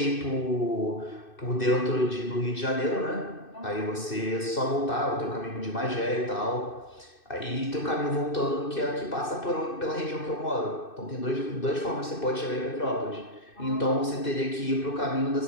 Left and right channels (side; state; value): right; late; 2.6 ms